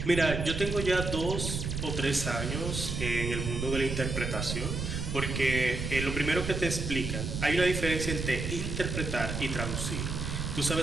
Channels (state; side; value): noise; right; rumble, 3 dB below the sound